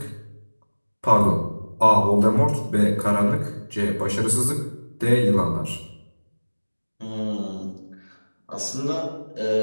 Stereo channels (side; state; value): both; inverted; correlation -1.00